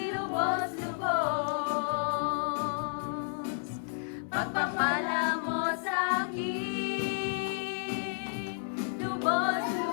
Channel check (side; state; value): right; silent; 57 dB below the other